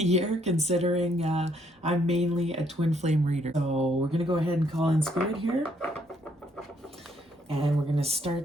considering I'm mainly a twin flame reader. So we're going to go ahead and call in Spirit here, and we're going to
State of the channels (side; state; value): both; normal; correlation 0.70